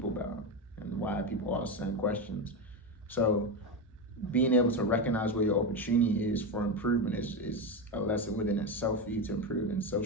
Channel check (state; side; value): normal; both; correlation 0.14